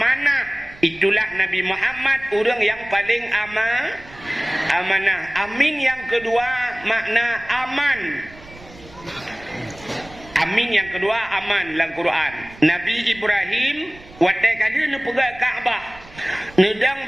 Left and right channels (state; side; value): noise; right; rumble, 21 dB below the sound